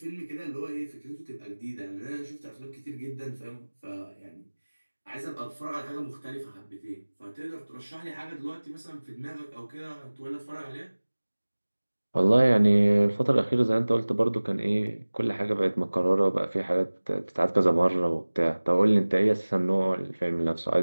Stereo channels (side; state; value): both; inverted; correlation -1.00